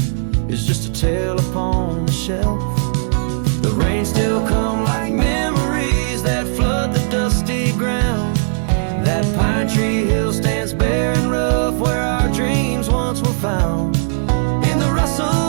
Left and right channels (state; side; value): silent; left; 67 dB below the other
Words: is just a tale upon the shelf. The rain still come like memories that flood the dusty ground. That pine tree hill stands